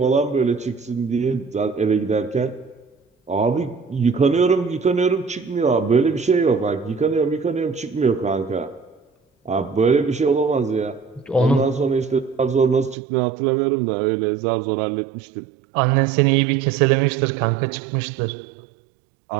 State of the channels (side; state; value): left; drops out; at 13.0 s